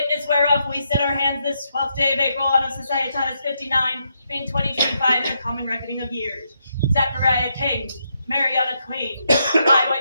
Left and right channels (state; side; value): inverted; both; correlation -0.79